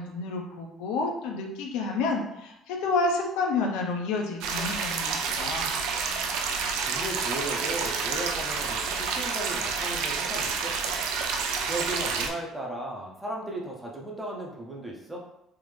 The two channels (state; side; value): normal; both; correlation 0.35